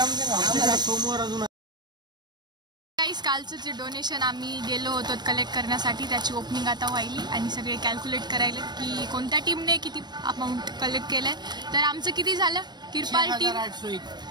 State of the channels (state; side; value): late; left; 0.21 ms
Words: सोमवार अजून कालचं जे डोनेशन आम्ही गेलो होतो कलेक्ट करण्यासाठी त्याची ओपनिंग आता व्हायली आणि सगळे कॅल्क्युलेट करायले की कोणत्या टीमने किती अमाऊंट कलेक्ट केलंय। तर आमचं किती झालं किरपाल टीम